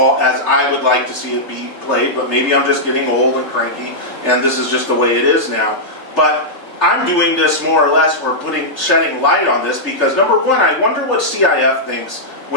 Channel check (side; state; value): right; late; 3.4 ms